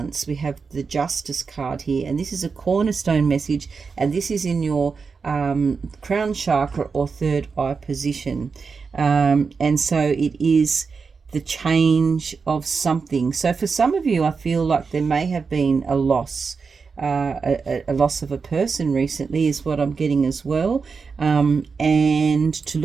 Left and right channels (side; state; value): left; quieter; 5.1 dB